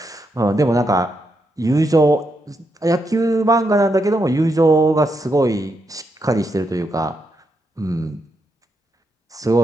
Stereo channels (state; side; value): normal; both; correlation 0.82